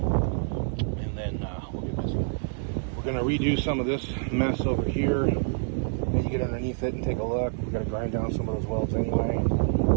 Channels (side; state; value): left; silent; 60 dB below the other